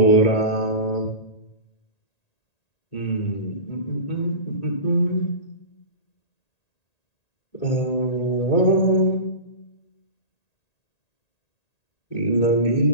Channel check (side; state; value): right; late; 1.8 ms